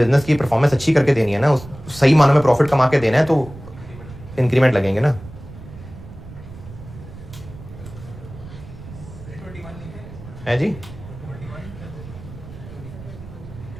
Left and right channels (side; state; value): right; noise; rumble, 15 dB below the sound